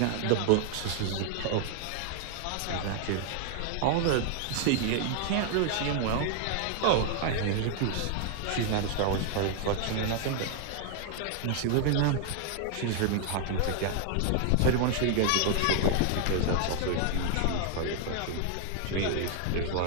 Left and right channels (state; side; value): different; both; correlation 0.00